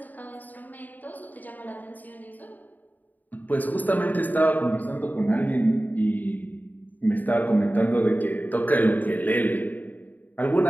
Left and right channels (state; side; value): late; right; 0.084 ms